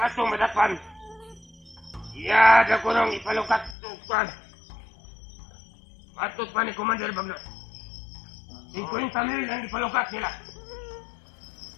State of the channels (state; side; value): drops out; right; at 3.8 s